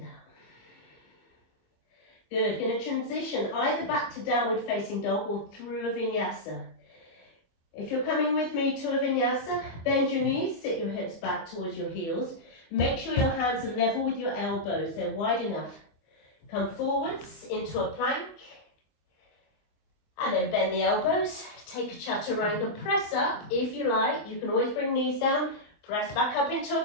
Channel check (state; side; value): late; right; 25 ms